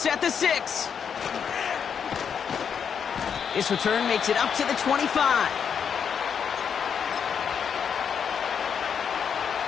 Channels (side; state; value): right; quieter; 7.3 dB